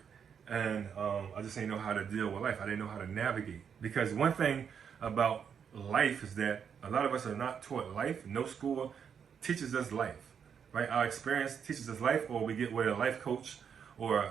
and I just didn't know how to deal with life. I didn't know how to navigate. Because one thing about life is that a lot of us are not taught life. No school teaches us life. Right? Our experience teaches us life, or we get with a life coach or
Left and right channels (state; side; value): quieter; left; 7.3 dB